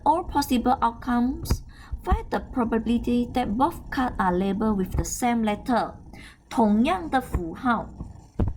all possible outcomes, find the probability that both cards are labeled with the same letter. 同样的符号。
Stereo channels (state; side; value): identical; both; correlation 1.00